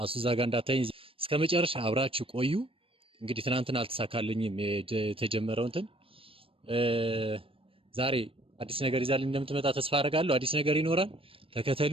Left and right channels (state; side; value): late; left; 0.26 ms